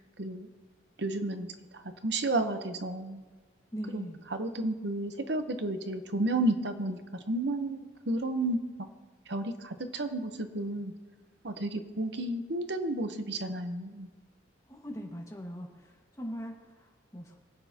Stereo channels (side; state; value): both; normal; correlation 0.42